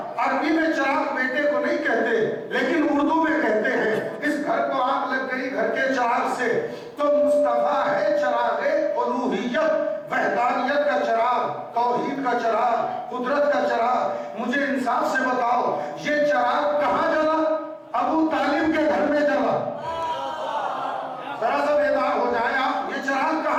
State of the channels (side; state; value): both; identical; correlation 1.00